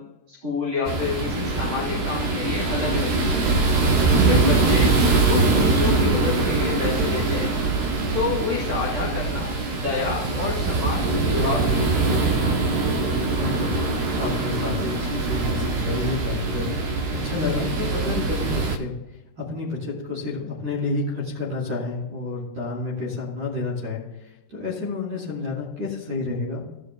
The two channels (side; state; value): left; late; 13 ms